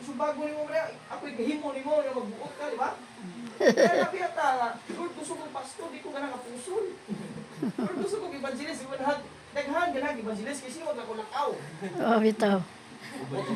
Gusto bago ni mo, ako'y gahimo ni mo, na magbuot ka, di ba? Kaya napiyata nga, Lord, gusto kong pastor, di ko ganang kapusol. Lord, gusto kong evangelist, daghan ganang evangelist, kasi magkakulakaw. Oh, bitaw.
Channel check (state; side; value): identical; both; correlation 1.00